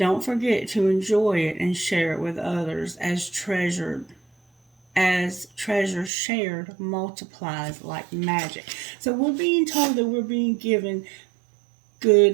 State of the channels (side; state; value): left; drops out; at 6.1 s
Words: forget to enjoy it and share it with others, as treasure shared multiplies like magic. So we're being told that we're being given